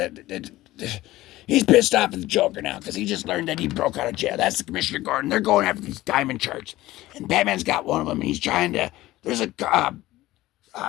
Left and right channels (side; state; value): right; quieter; 16.9 dB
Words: He's pissed off at the Joker now because he just learned that he broke out of jail. That's the Commissioner Gordon. They're going after these diamond charts. And Batman's got one of them, and he's trying to... There's a...